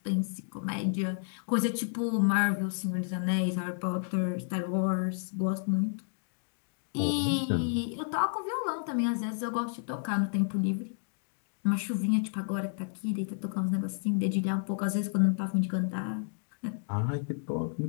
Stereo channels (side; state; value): right; silent; digital silence